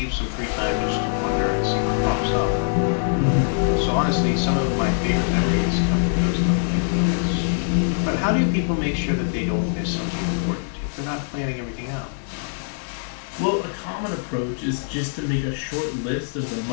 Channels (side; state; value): right; silent; digital silence